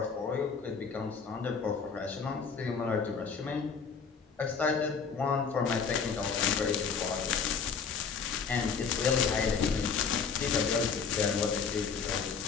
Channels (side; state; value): right; quieter; 5.9 dB